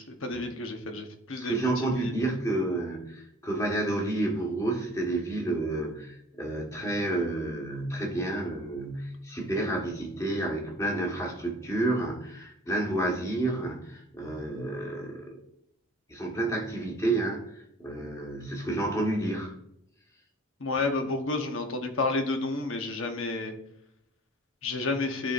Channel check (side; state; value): both; normal; correlation 0.49